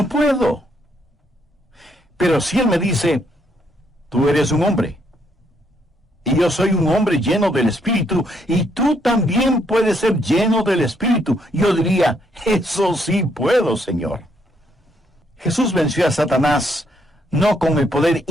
puedo. Pero si Él me dice: tú eres un hombre, y yo soy un hombre lleno del Espíritu, y tú también puedes ser lleno del Espíritu, yo diría: eso sí puedo, Señor. Jesús venció a Satanás no con el poder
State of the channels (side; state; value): both; normal; correlation 0.72